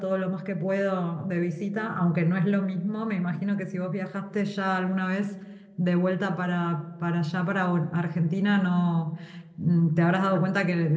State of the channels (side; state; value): both; identical; correlation 1.00